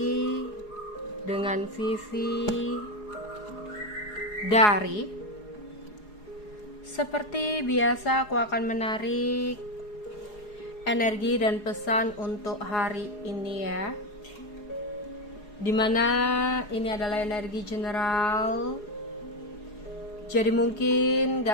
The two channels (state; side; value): late; right; 4.8 ms